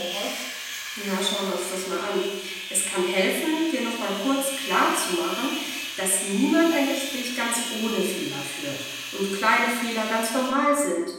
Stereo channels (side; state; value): both; identical; correlation 1.00